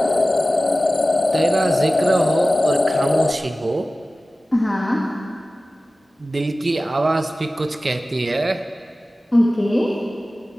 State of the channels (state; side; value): normal; both; correlation 0.96